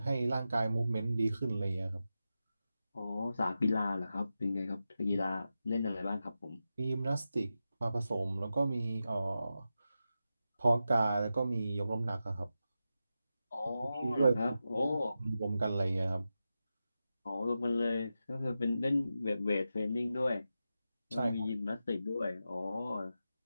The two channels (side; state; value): both; inverted; correlation -0.91